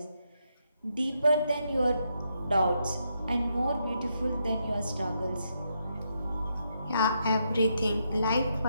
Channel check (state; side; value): inverted; both; correlation -0.80